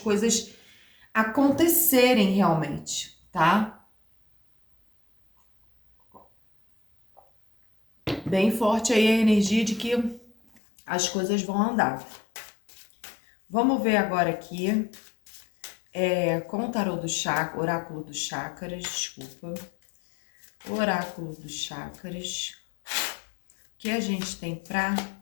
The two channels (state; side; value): drops out; right; at 10.6 s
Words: acontecerem realmente, tá? Bem forte aí a energia de que as coisas vão andar. Vamos ver agora aqui, com o tarô do chakra, oráculo dos chakras, desculpa. Oráculo dos chakras. O que a gente tem para